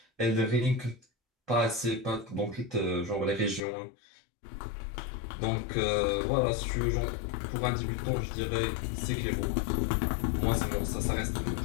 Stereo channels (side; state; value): right; drops out; at 3.6 s